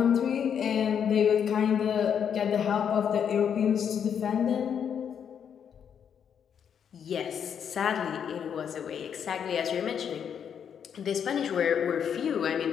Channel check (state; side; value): quieter; right; 8.0 dB